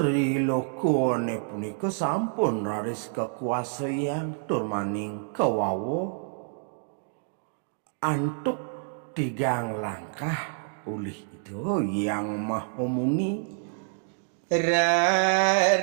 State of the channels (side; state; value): left; silent; digital silence